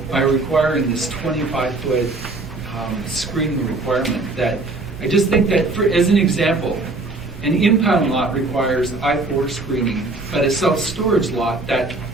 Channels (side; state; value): left; quieter; 3.2 dB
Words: by requiring this 25-foot screening requirement. That I just think that, as an example, an impound lot requires I-4 screening, but a self-storage lot that